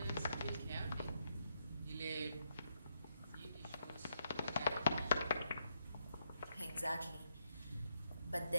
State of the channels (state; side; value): inverted; both; correlation -0.78